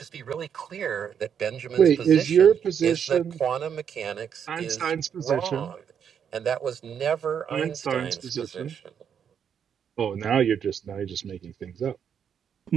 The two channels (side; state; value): left; quieter; 7.9 dB